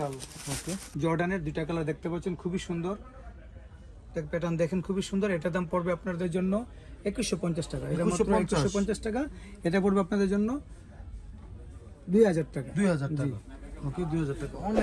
ওকে, জর্ডানের দুইটা কালার দেখতে পাচ্ছেন, খুবই সুন্দর, প্যাটার্ন দেখেন, খুবই সুন্দর। এটার দাম পড়বে আপনাদের জন্য 2150 টাকা। এটা মাত্র 2150 টাকা। এটা পড়বে আপনাদের জন্য 2000 টাকা। 2000 টাকা। ওকে, 2000 টাকা।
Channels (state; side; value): identical; both; correlation 1.00